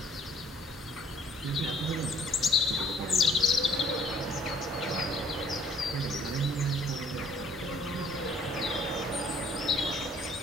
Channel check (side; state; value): both; normal; correlation 0.59